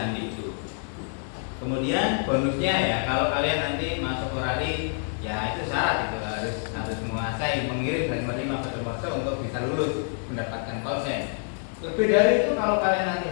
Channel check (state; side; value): silent; right; 59 dB below the other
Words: itu. Kemudian bonusnya ya, kalau kalian nanti masuk orali, ya itu syarat itu harus menguasai mengirim dan menerima kode Morse untuk bisa lulus mendapatkan konsen. Lebih dari itu kalau kalian nanti